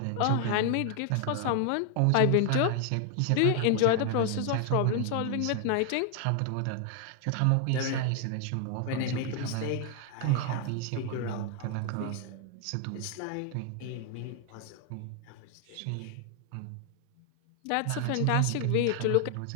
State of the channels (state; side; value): different; both; correlation 0.00